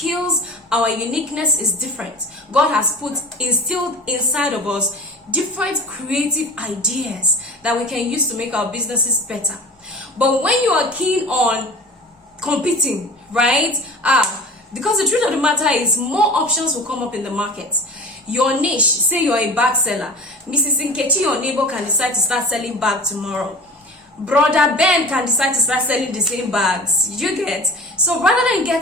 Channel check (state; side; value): normal; both; correlation 0.38